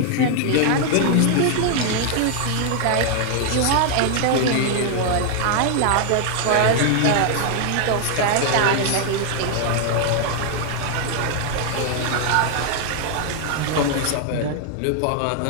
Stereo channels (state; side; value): different; both; correlation 0.00